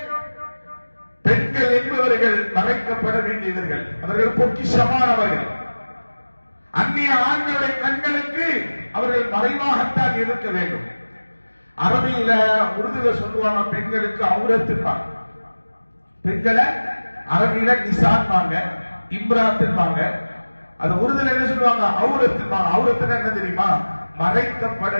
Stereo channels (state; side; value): inverted; both; correlation -1.00